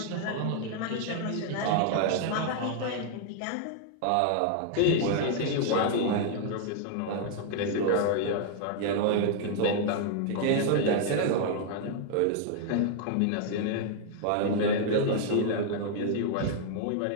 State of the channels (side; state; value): both; different; correlation 0.00